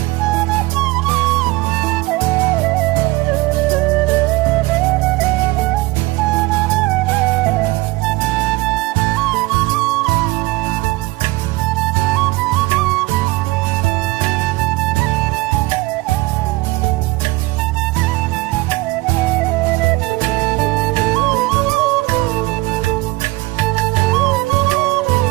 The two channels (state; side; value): quieter; left; 21.3 dB